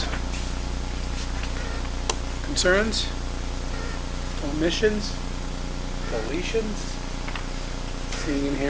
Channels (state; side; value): identical; both; correlation 1.00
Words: Concerns? Omissions? Deletions? Seeing and